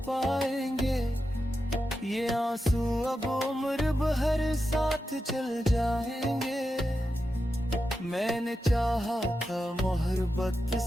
पाएंगे, ये आंसू अब उम्र भर साथ चल जाएंगे। मैंने चाहा था मोहब्बत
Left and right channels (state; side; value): normal; both; correlation 0.89